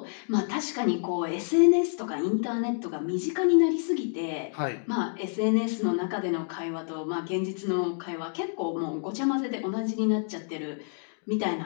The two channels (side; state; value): right; silent; 59 dB below the other